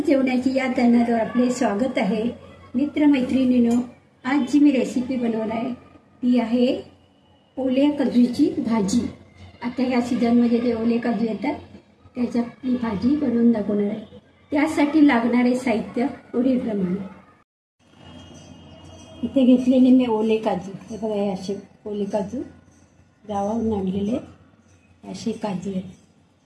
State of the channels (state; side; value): identical; both; correlation 1.00